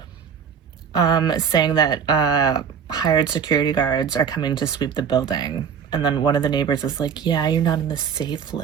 saying that hired security guards are coming to sweep the building. And then one of the neighbors is like, yeah, you're not on the safe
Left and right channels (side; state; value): left; quieter; 7.2 dB